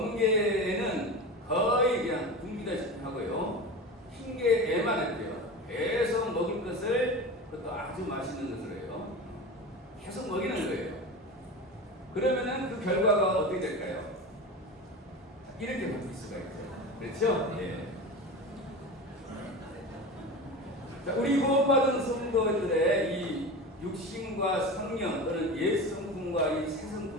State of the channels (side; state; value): both; normal; correlation 0.28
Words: 거의 그냥 굶기다시피 하고요. 흰계에만 할게요. 계속 먹을 것을, 그것도 아주 맛있는 것을 해요. 계속 먹이는 거예요. 그러면은 그 결과가 어떻게 될까요? 이렇게 바뀔 수가 있죠. 그렇죠? 예. 자, 우리 구원받은 성도들의 이 육신과 성령 또는 옛 성품과 이 새